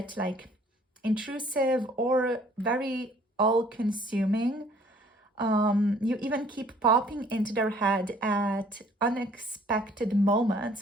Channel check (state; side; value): normal; both; correlation 0.57